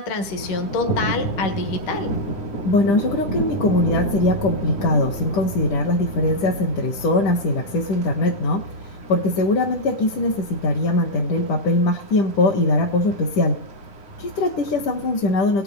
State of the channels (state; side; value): late; right; 10 ms